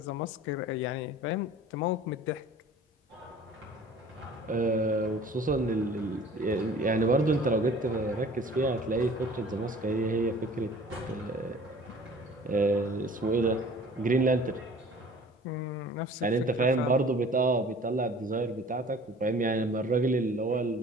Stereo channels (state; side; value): normal; both; correlation 0.47